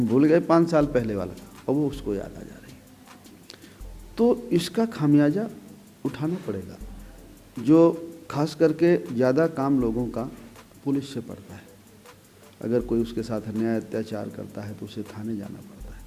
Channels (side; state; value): both; identical; correlation 1.00